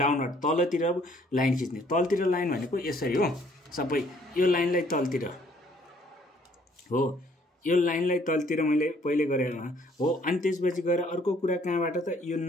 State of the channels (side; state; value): both; normal; correlation 0.63